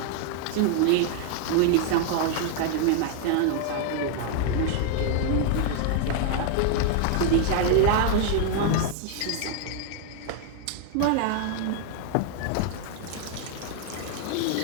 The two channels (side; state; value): both; different; correlation 0.00